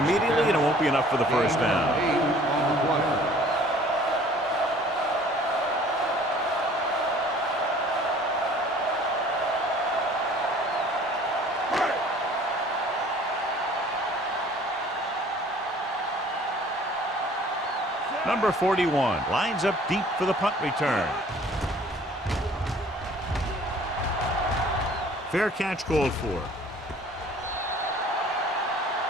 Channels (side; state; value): both; normal; correlation 0.52